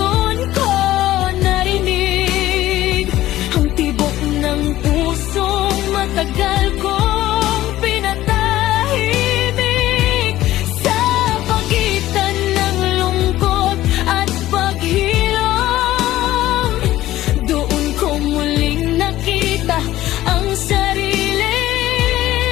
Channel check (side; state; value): right; quieter; 15.0 dB